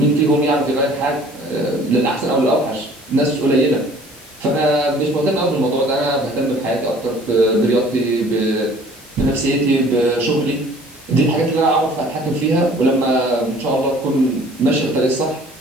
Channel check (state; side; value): normal; both; correlation 0.52